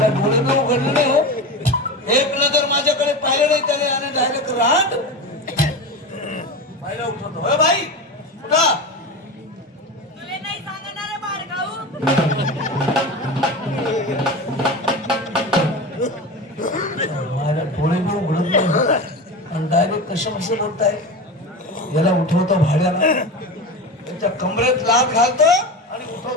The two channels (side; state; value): both; normal; correlation 0.25